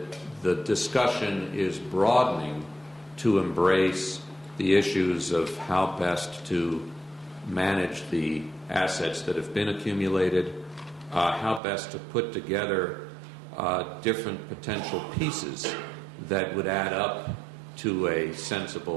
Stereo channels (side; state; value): left; drops out; at 11.6 s